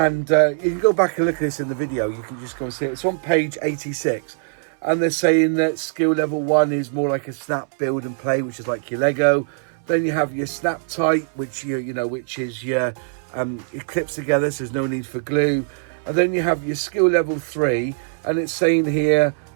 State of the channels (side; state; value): left; silent; 64 dB below the other